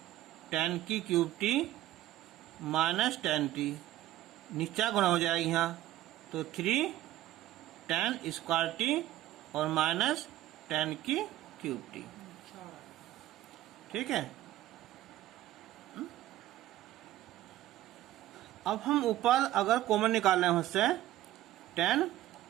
tan की cube T minus tan T, नीचा गुणा हो जाएगी यहाँ, तो 3 tan स्क्वायर टी और माइनस tan की क्यूब टी। ठीक है, अब हम ऊपर अगर कॉमन निकाल रहे हैं उससे tan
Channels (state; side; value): quieter; left; 14.4 dB